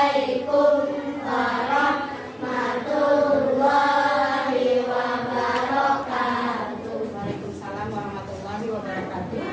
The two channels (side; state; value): both; identical; correlation 1.00